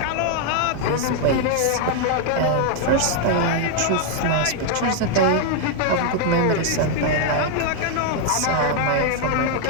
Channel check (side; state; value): both; different; correlation 0.00